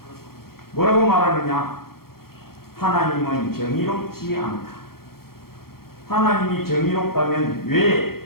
뭐라고 말하느냐? 하나님은 정의롭지 않다. 하나님이 정의롭다면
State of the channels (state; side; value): late; right; 0.94 ms